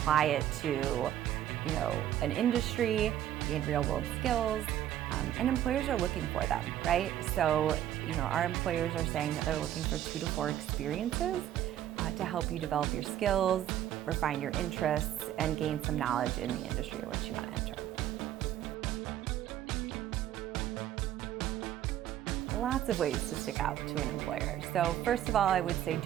it to, an industry, gain real-world skills, and employers are looking for them, right? So, our employers are saying that they're looking for 2 to 4 experiences to help you develop your skills, refine your interests, and gain some knowledge in the industry in which you want to enter. Lots of ways to stick out to an employer. So first of all, I would say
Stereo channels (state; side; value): quieter; left; 11.7 dB